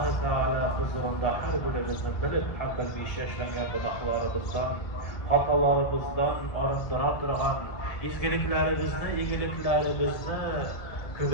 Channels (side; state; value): right; late; 1.7 ms